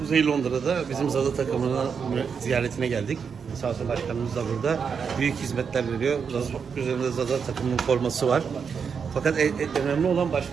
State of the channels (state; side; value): quieter; left; 6.3 dB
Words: Londra'da bizim Zada takımının ziyaretine geldik. Sağ olsun başkanımız da burada. Büyük hizmetler veriyor. Üzerinde Zada takımının forması var. Fakat önemli olan